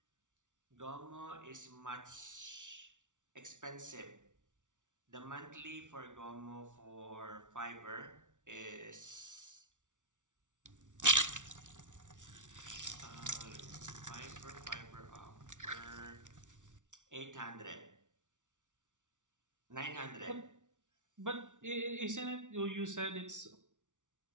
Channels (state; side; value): late; left; 0.87 ms